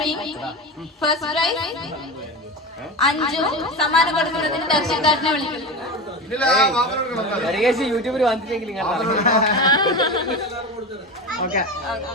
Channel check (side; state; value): both; normal; correlation 0.24